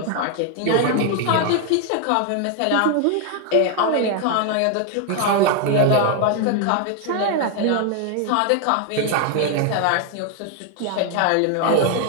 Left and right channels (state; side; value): different; both; correlation 0.01